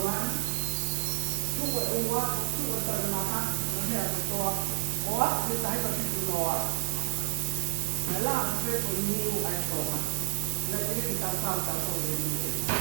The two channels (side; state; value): left; silent; 58 dB below the other